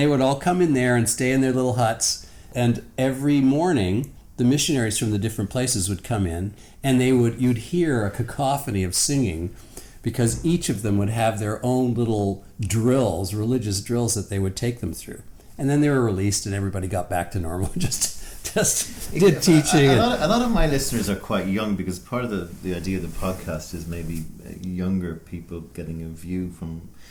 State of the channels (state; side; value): identical; both; correlation 1.00